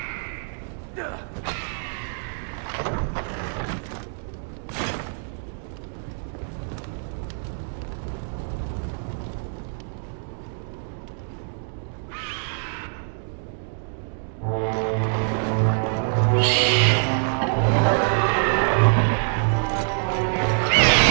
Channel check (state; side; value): silent; left; 62 dB below the other